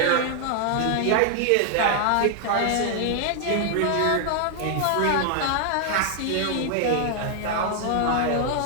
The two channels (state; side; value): different; both; correlation 0.00